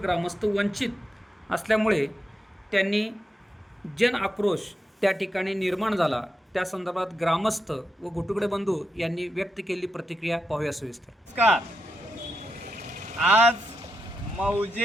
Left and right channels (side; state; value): both; normal; correlation 0.85